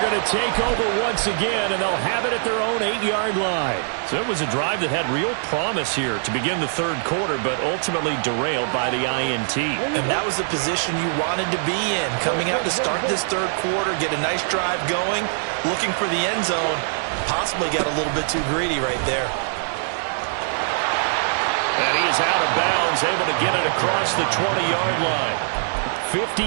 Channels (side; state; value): left; silent; 55 dB below the other